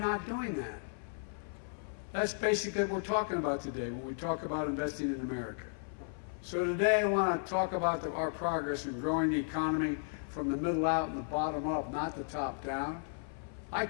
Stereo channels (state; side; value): silent; right; 55 dB below the other